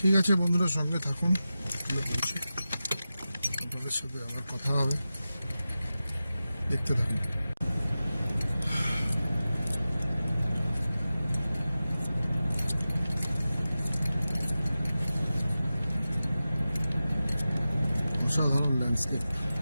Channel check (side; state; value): both; inverted; correlation -0.94